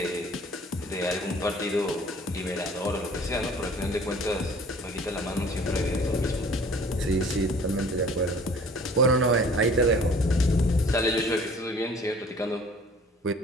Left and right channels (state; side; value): normal; both; correlation 0.50